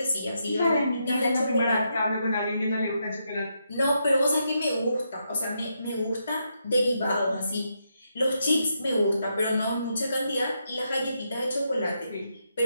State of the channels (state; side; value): inverted; both; correlation -0.81